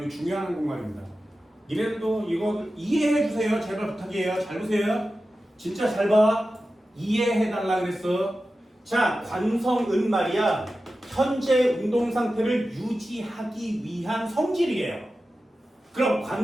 이 중요한 한국말입니다. 이래도 이거 이해해 주세요. 제발 부탁이에요. 잘 보세요. 진짜 잘 봐. 이해해달라 그랬어. 자, 관성은 말이야. 현재 운동 상태를 유지하기 위한 성질이에요. 그럼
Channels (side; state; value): both; normal; correlation 0.93